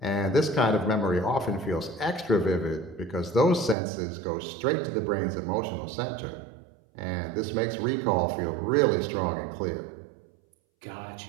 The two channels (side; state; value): left; drops out; at 3.8 s